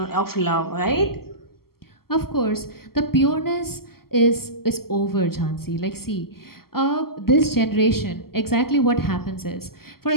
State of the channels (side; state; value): right; late; 0.94 ms